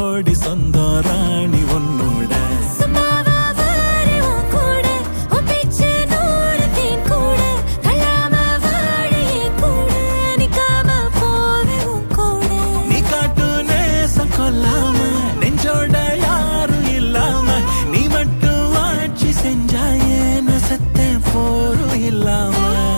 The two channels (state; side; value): inverted; both; correlation -1.00